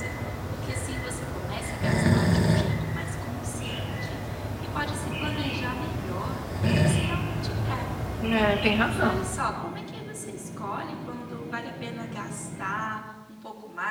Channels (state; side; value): identical; both; correlation 1.00